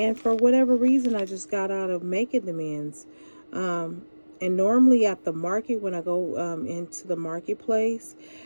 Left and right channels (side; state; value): both; inverted; correlation -1.00